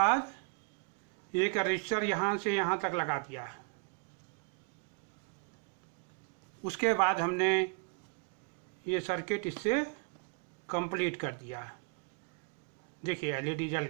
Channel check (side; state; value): left; quieter; 38.7 dB